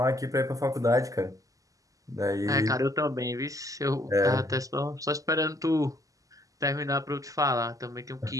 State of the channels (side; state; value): left; late; 0.17 ms